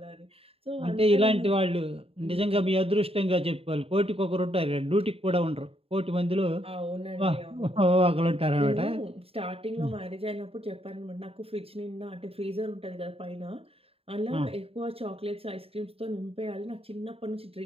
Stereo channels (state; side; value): late; left; 0.28 ms